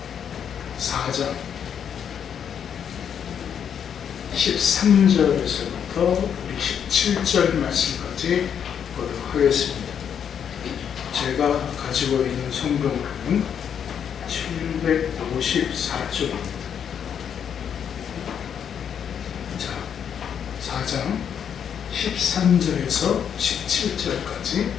4장 13절에서부터 우리 17절 말씀까지 보도록 하겠습니다. 제가 가지고 있는 성경으로는 754쪽입니다. 자, 4장 13절에서 17절까지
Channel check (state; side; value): quieter; right; 8.2 dB